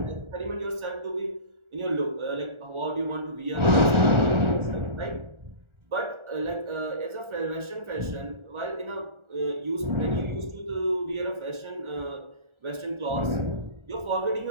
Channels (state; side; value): late; left; 1.4 ms